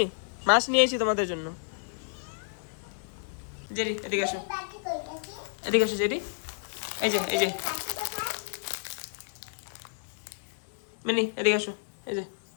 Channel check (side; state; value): right; silent; 57 dB below the other